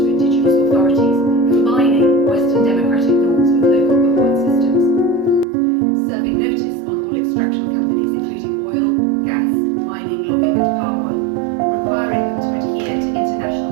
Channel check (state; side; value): drops out; left; at 5.5 s